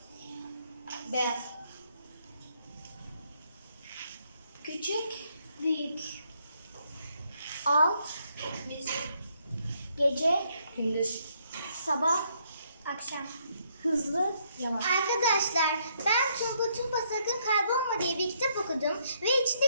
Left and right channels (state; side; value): inverted; both; correlation -0.72